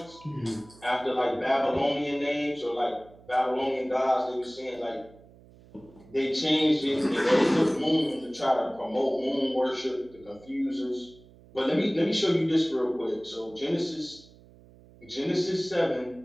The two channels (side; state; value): right; noise; hum, 24 dB below the sound